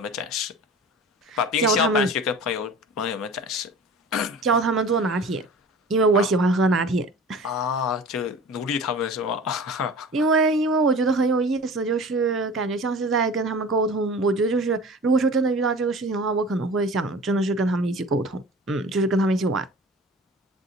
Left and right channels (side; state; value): both; normal; correlation 0.40